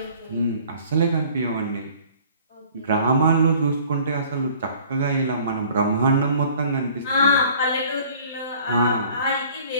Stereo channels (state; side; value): inverted; both; correlation -0.52